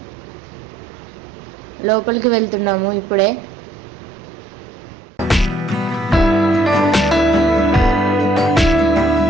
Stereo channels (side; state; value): both; normal; correlation 0.67